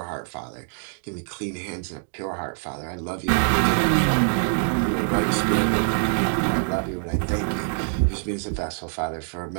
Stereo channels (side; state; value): left; silent; digital silence